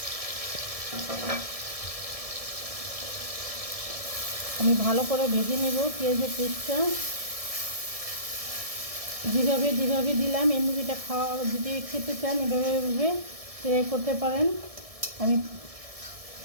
আমি ভালো করে ভেজে নেব পেঁয়াজের পেস্টটা। যেভাবে দিলাম এই মুরগিটা খাওয়া, যদি খেতে চান এভাবে ট্রাই করতে পারেন। আমি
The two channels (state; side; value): late; left; 1.7 ms